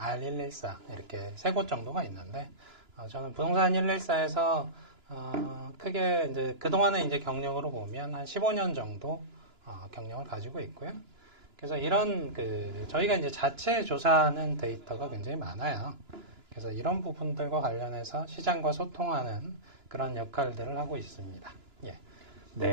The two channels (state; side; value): late; left; 2.9 ms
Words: 이렇게 세 곳 정도가 있는데, 저는 부동산 114에서 크게 이제 그동안의 이제 경력으로 보면 한 15년 정도 경력을 가지고 있고요. 그래서 이런 저희가 이제 자체 조사하는 데이터가 굉장히 많아요. 그래서 이런 부분들과 관련해서 시장과 소통하는 그런 역할들을 하고 있습니다. 예.